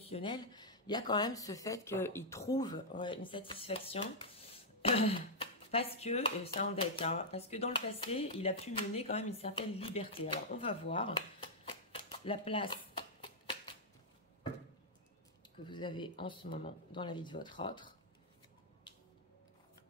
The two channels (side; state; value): both; normal; correlation -0.07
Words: il y a quand même ce fait qu'il trouve une satisfaction parce que, c'est un deck, hein, parce que dans le passé, il a pu mener quand même une certaine liberté. Alors, on va voir la place que vous avez en ce moment dans la vie de votre autre.